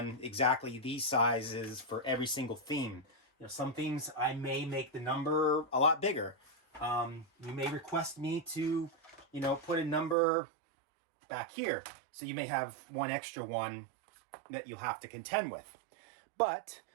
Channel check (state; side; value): drops out; left; at 10.2 s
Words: exactly these sizes for every single theme. You know, some themes I may make the number a lot bigger. You may request me to, you know, put a number back here. So you may have one extra one that you'll have to contend with. But